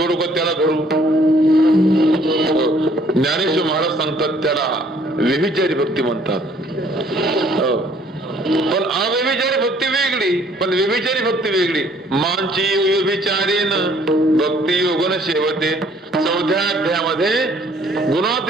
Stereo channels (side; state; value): both; normal; correlation 0.61